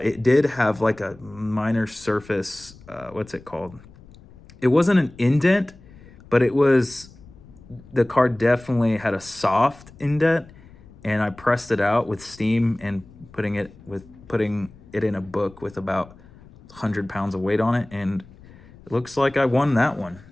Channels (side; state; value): left; noise; rumble, 22 dB below the sound